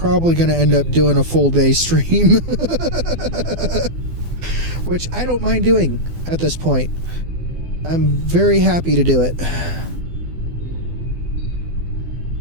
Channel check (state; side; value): late; left; 12 ms